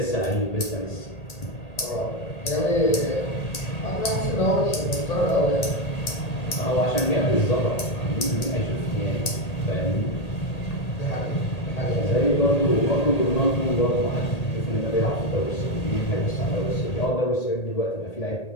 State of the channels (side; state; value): right; late; 1.8 ms